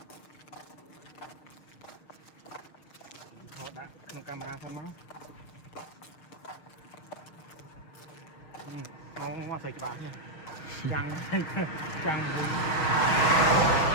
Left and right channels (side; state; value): right; late; 6.6 ms